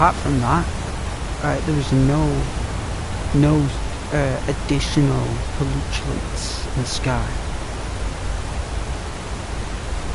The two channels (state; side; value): identical; both; correlation 1.00